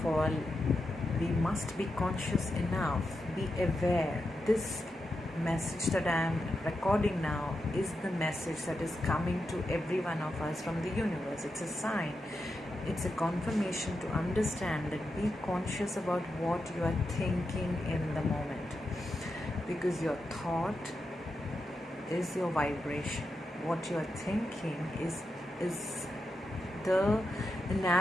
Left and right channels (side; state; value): both; normal; correlation 0.87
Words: all, we must be conscious enough, be aware. This message that I am recording now is the message that is coming to every one of us from the universe. It's a sign, it's a confirmation to understand that be conscious about what you are thinking in the moment, because your thought is your vibration. What you are thinking is the